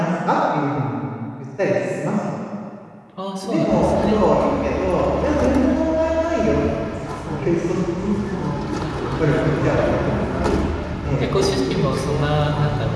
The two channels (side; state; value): both; identical; correlation 1.00